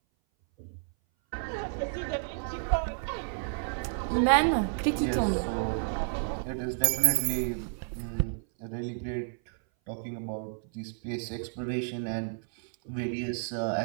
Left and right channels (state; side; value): silent; left; 57 dB below the other